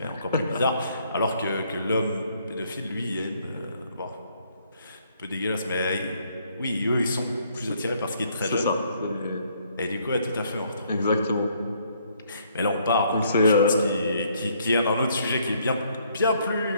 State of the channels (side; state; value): both; inverted; correlation -0.68